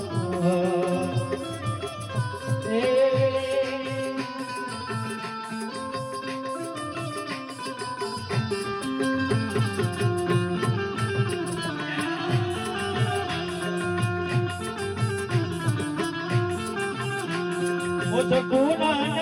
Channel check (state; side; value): identical; both; correlation 1.00